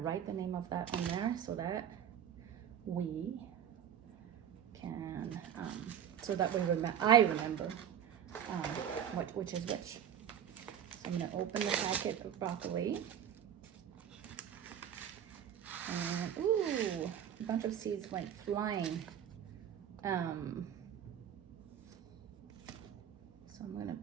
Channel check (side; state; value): left; quieter; 9.4 dB